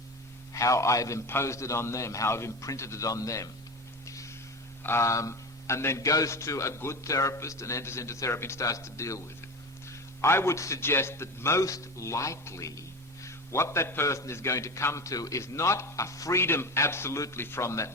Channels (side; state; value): both; normal; correlation 0.26